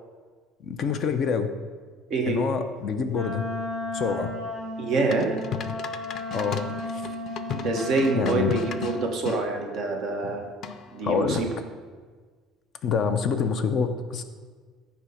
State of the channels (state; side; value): normal; both; correlation 0.48